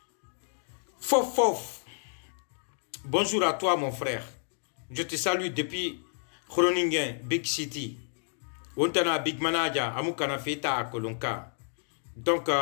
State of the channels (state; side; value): silent; right; digital silence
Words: Fof bonjour à toi mon frère, je te salue depuis Groningen Big City. Ontana big manager amukana feta kolonka donc